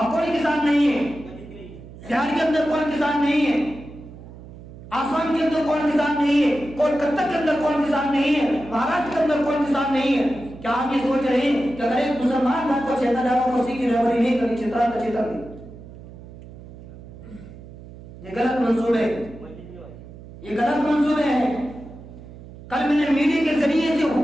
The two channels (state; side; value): noise; right; hum, 16 dB below the sound